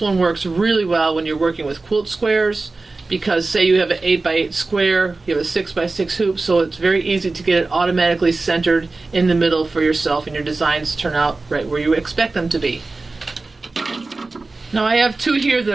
one works really well when you're working with quilt squares, because say you have an 8x8 square, you have a 6x6 hoop, so it's very easy to get it automatically centered in the middle for yourself, and your designs turn out right where you expect them to be. Now I have two here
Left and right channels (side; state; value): left; quieter; 3.5 dB